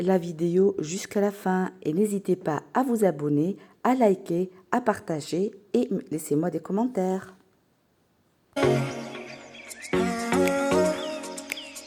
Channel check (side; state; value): both; identical; correlation 1.00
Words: vidéo jusqu'à la fin et n'hésitez pas à vous abonner, à liker, à partager et laissez-moi des commentaires.